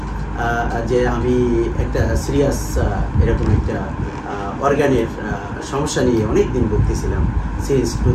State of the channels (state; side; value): identical; both; correlation 1.00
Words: যে আমি একটা সিরিয়াস এরকম একটা অর্গানের সমস্যা নিয়ে অনেক দিন ভুগতেছিলাম সিন্স